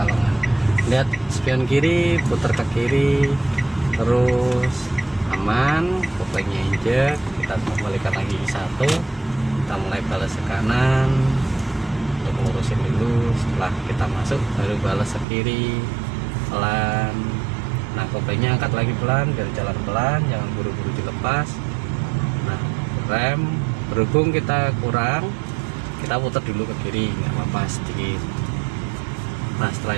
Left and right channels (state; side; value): drops out; left; at 15.2 s